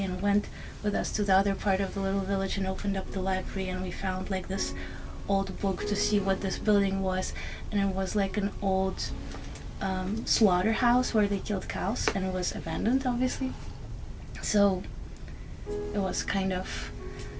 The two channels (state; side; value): identical; both; correlation 1.00